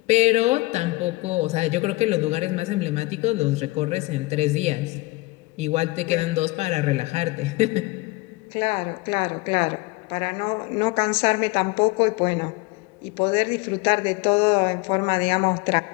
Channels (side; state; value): right; quieter; 22.1 dB